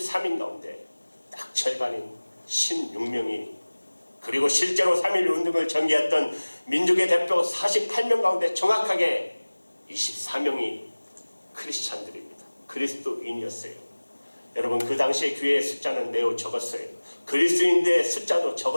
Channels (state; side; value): inverted; both; correlation -1.00